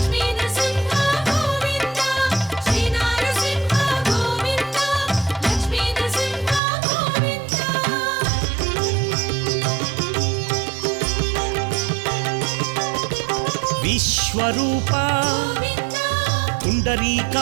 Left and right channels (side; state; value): left; drops out; at 6.6 s